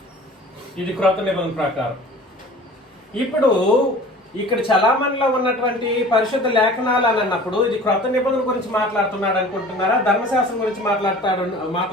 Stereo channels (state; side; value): normal; both; correlation 0.44